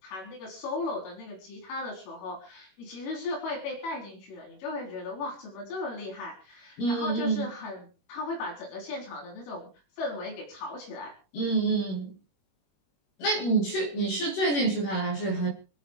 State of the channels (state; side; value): late; right; 21 ms